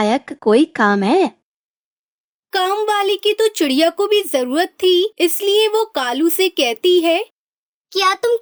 कोई काम है? काम वाली की तो चिड़िया को भी जरूरत थी, इसलिए वो कालू से कहती है, क्या तुम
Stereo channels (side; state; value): both; identical; correlation 1.00